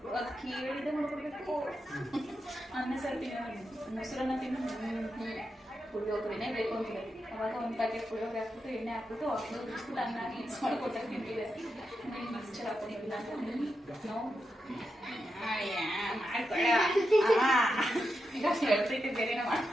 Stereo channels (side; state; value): both; normal; correlation 0.87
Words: ಕೇಳಿದೆ ಮಾಡ್ಕೊಡ್ಬೇಕು. ಅನ್ನ ಸಾರು ತಿನ್ನೋ, ಮೊಸರನ್ನ ತಿನ್ನು, ಪುಳಿಯೋಗರೆನೇ ಬೇಕು ಅಂತಿದೆ. ಅವಾಗ ಒಂದು ಪ್ಯಾಕೆಟ್ ಪುಳಿಯೋಗರೆ ಹಾಕ್ಬಿಟ್ಟು ಎಣ್ಣೆ ಹಾಕ್ಬಿಟ್ಟು ಬಿಸ್ಬಿಟ್ಟು ಅನ್ನ ಮಿಕ್ಸ್ ಮಾಡ್ಕೊಟ್ಟಾಗ ತಿಂತಿದೆ. ಮಿಕ್ಸ್ಚರ್ ಹಾಕೊಂಡಿಲ್ಲ ನಾವು ಮಾಡ್ಬೇಡ ಈಗ ಹೇಳ್ತೈತೆ ಬೇರೆನ